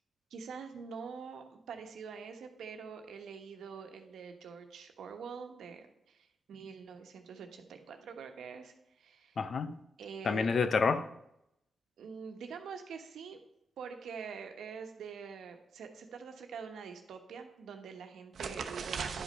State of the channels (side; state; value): both; normal; correlation 0.80